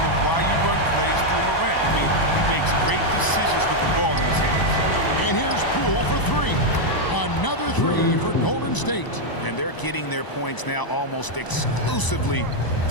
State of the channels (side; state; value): right; late; 1.0 ms